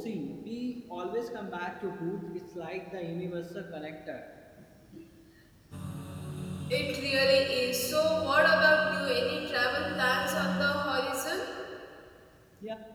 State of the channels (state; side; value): identical; both; correlation 1.00